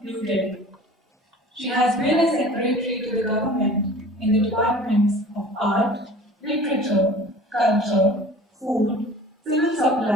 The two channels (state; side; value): normal; both; correlation 0.44